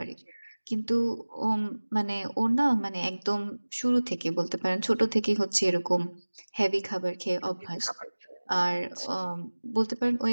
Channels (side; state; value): both; inverted; correlation -1.00